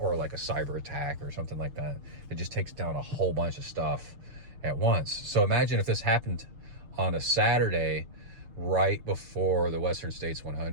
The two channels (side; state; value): left; late; 6.5 ms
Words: like a cyber attack or something like that. It just takes down a whole bunch of stuff at once. So imagine if this happened on a Saturday right before the Western States